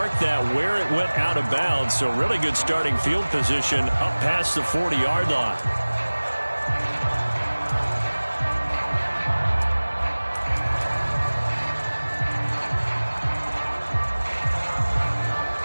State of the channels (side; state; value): both; inverted; correlation -1.00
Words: that where it went out of bounds, so really good starting field position up past the 40-yard line.